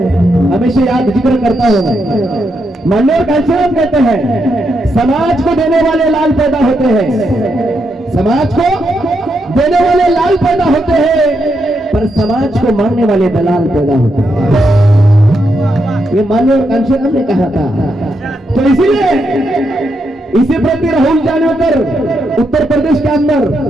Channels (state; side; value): normal; both; correlation 0.81